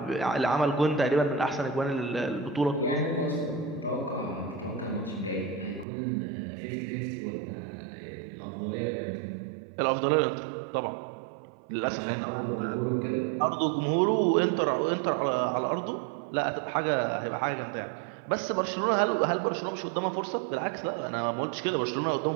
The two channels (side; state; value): left; drops out; at 5.9 s